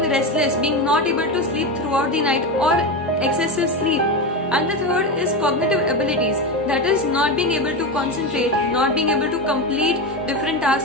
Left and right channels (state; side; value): normal; both; correlation 0.17